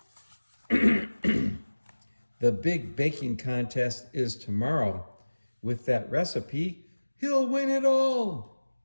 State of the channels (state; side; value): inverted; both; correlation -1.00